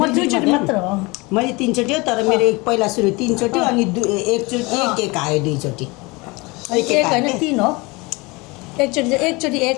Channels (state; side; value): quieter; right; 25.2 dB